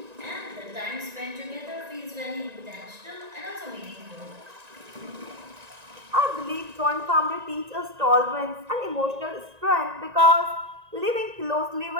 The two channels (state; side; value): late; left; 1.9 ms